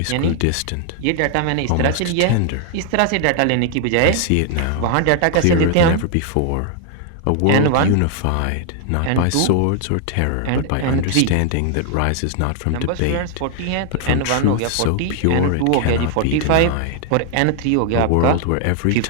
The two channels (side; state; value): both; different; correlation 0.00